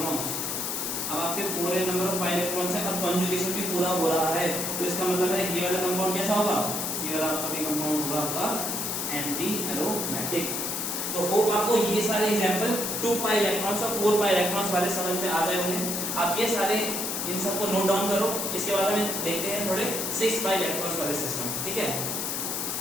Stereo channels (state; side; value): noise; left; hiss, 2 dB below the sound